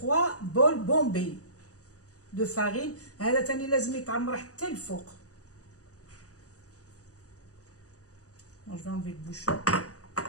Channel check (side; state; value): right; late; 0.66 ms